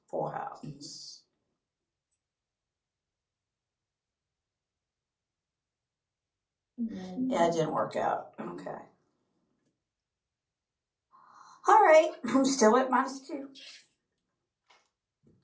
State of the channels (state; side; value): identical; both; correlation 1.00